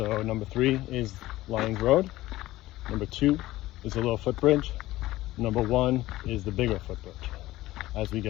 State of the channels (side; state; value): right; quieter; 16.8 dB